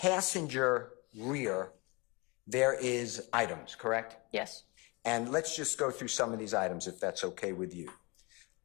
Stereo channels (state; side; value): quieter; right; 27.3 dB